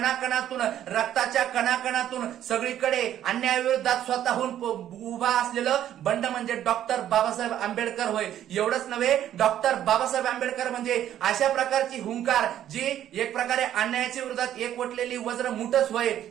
रक्ताच्या कणाकणातून सगळीकडे अन्यायाविरोधात स्वतःहून उभा असलेलं बंड म्हणजे डॉक्टर बाबासाहेब आंबेडकर होय. एवढंच नव्हे, डॉक्टर बाबासाहेब आंबेडकर म्हणजे अशा प्रकारची हुंकार जी एक प्रकारे अन्यायाच्या विरोधात एकवटलेली वज्र मुठच होय.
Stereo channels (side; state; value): left; quieter; 11.3 dB